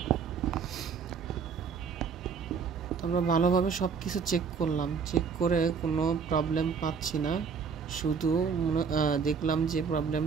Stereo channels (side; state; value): left; quieter; 5.9 dB